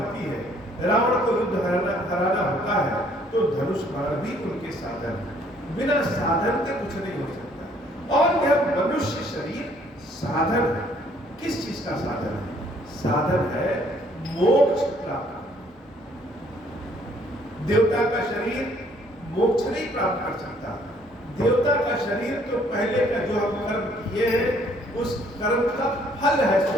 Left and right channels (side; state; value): both; normal; correlation 0.63